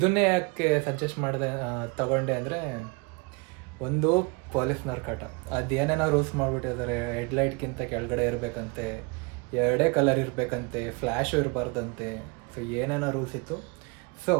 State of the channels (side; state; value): left; quieter; 30.3 dB